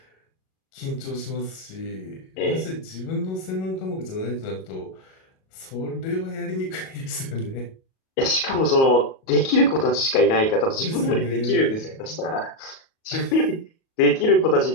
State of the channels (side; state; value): right; late; 37 ms